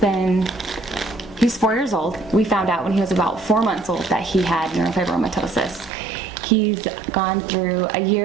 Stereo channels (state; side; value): drops out; left; at 5.9 s